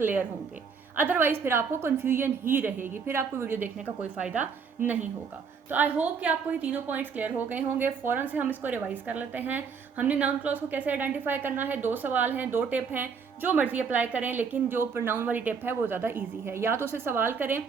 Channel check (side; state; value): left; quieter; 5.9 dB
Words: होंगे। अदरवाइज फिर आपको कन्फ्यूजन ही रहेगी, फिर आपको वीडियो देखने का कोई फ़ायदा नहीं होगा। तो आई होप कि आपको ये तीनों पॉइंट्स क्लियर हो गए होंगे। फ़ौरन से हम इसको रिवाइज कर लेते हैं। हमने नाउन क्लॉज को कैसे आइडेंटिफाई करना है, 2 सवाल हैं, 2 टिप हैं, जो मर्जी अप्लाई करें, लेकिन जो प्रोनाउन वाली टिप है वो ज़्यादा ईजी है। या तो उसे सवाल करें,